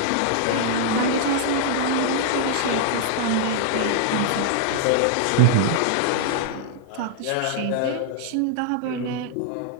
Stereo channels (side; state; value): both; different; correlation -0.01